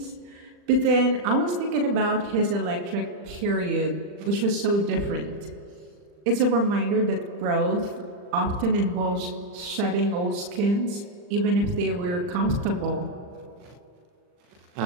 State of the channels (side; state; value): left; late; 40 ms